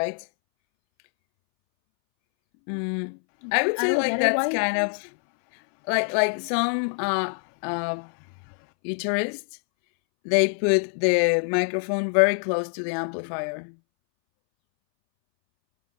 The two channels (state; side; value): silent; right; 62 dB below the other